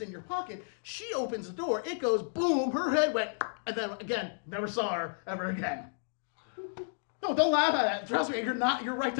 in your pocket, she opens the door, it goes boom, her head went, and then again, never saw her ever again. No, don't laugh at that. Trust me, you're right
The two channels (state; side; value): silent; right; digital silence